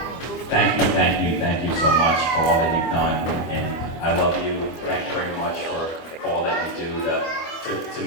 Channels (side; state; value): right; late; 24 ms